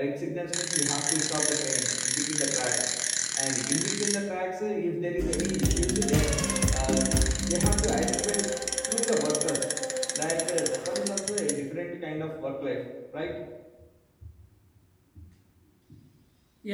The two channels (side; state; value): both; identical; correlation 1.00